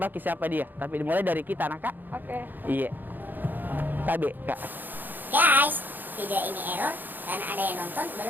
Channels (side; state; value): left; late; 0.088 ms